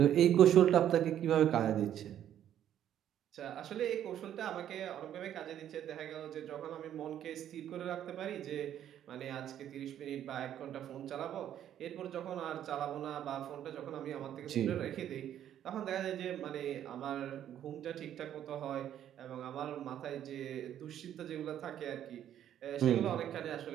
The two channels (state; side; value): quieter; left; 10.7 dB